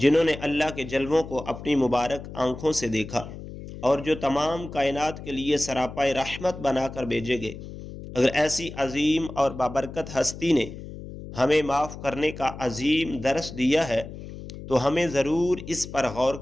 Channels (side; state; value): left; noise; hum, 12 dB below the sound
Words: نے اللہ کے جلووں کو اپنی مبارک آنکھوں سے دیکھا، اور جو تمام کائنات کے لیے سراپائے رحمت بنا کر بھیجے گئے۔ اگر ایسی عظیم اور بابرکت ہستی نے ہمیں معاف کرنے کا عظیم درس دیا ہے تو ہمیں ضرور اس پر غور